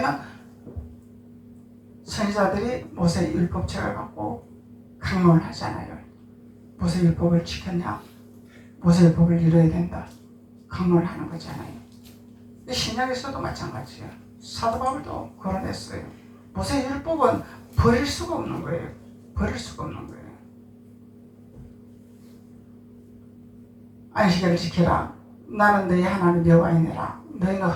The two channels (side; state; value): both; identical; correlation 1.00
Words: 선지자들이 모세 율법책을 갖고 강론을 하잖아요. 모세 율법을 지켰냐? 모세 율법을 이뤄야 된다. 강론을 하는 거잖아요. 신약에서도 마찬가지예요. 사도 바울도 거론했어요. 모세 율법은 버릴 수가 없는 거예요. 버릴 수가 없는 거예요. 안식일을 지켜라. 나는 너희 하나님 여호와이니라. 너희는